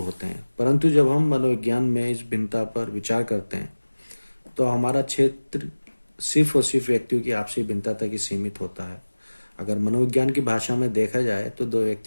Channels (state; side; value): inverted; both; correlation -1.00